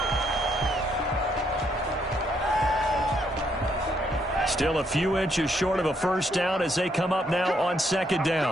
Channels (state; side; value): normal; both; correlation 0.73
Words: Still a few inches short of a first down as they come up now on second